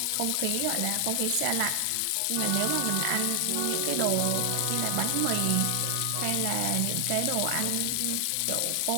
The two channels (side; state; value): both; different; correlation 0.00